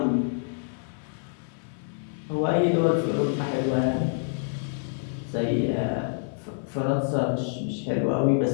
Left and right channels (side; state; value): right; silent; 60 dB below the other